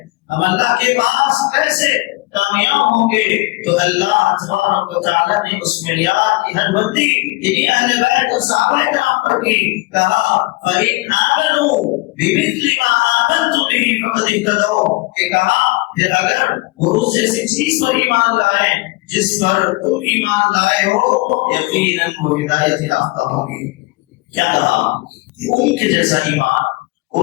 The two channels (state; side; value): quieter; right; 22.6 dB